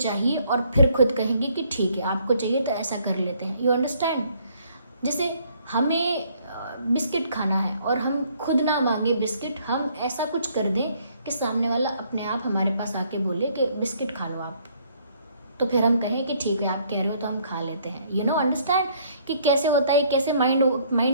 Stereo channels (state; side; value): inverted; both; correlation -0.64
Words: और फिर खुद कहेंगे कि ठीक है आपको चाहिए तो ऐसा कर लेते हैं। You understand? जैसे हमें बिस्किट खाना है और हम खुद ना मांगे बिस्किट, हम ऐसा कुछ कर दें कि सामने वाला अपने आप हमारे पास आके बोले कि बिस्किट खा लो आप, तो फिर हम कहें कि ठीक है आप कह रहे हो तो हम खा लेते हैं। यू नो अंडरस्टैंड कि कैसे होता है, कैसे